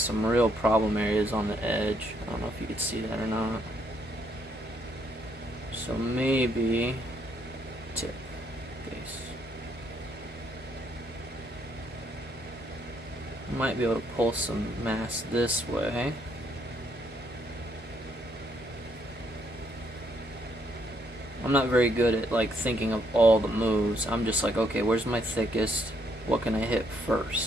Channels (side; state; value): both; normal; correlation 0.71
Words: real problem areas on the edge. I don't know if you could see that or not. So maybe tip, base. Might be able to pull some mass this way. I'm not very good at like thinking of all the moves. I'm just like, okay, where's my thickest? What can I hit